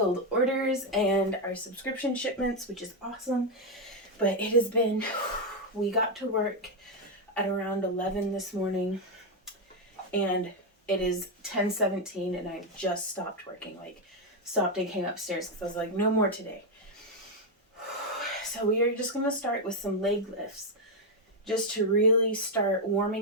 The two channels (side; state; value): both; normal; correlation 0.03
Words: orders and our subscription shipments, which is awesome. But it has been, we got to work at around 11 this morning and it is 10:17 and I just stopped working. Stopped and came upstairs because I was like, no more today. So we are just going to start with some leg lifts just to really start